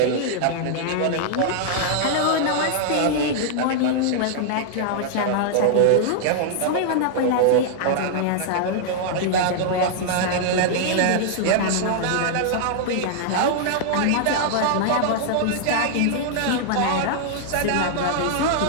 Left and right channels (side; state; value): both; different; correlation -0.01